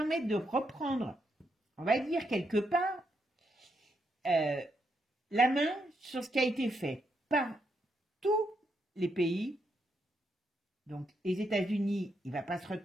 de reprendre, on va dire quelque part, la main sur ce qui a été fait par tous les pays. Donc, les États-Unis, il ne va pas se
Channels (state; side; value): normal; both; correlation 0.80